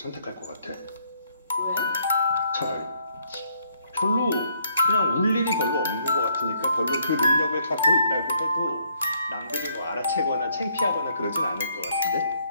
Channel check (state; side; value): inverted; both; correlation -0.69